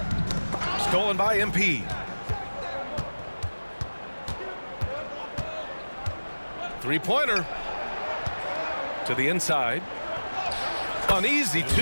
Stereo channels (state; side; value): inverted; both; correlation -1.00